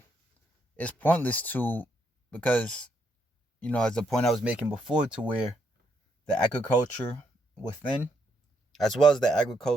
it's pointless because, as the point I was making before, to where the agriculture within, as well as the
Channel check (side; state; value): both; normal; correlation 0.76